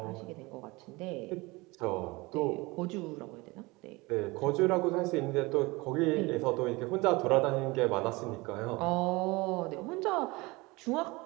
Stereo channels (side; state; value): left; quieter; 23.5 dB